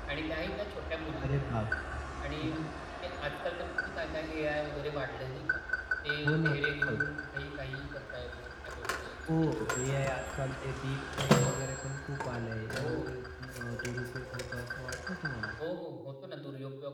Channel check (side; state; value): both; identical; correlation 1.00